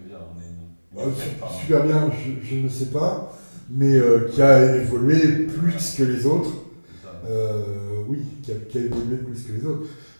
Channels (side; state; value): both; inverted; correlation -1.00